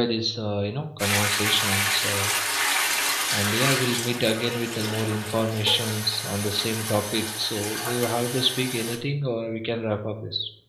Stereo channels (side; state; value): both; identical; correlation 1.00